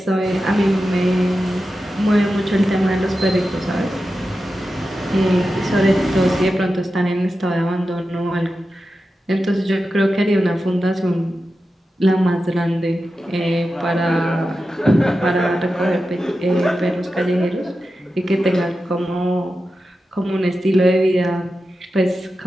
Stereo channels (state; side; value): normal; both; correlation 0.91